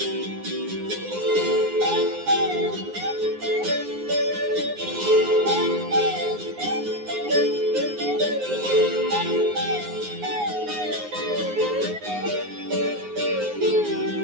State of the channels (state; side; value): late; left; 9.6 ms